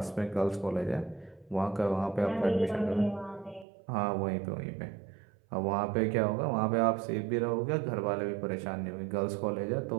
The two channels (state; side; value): drops out; left; at 3.7 s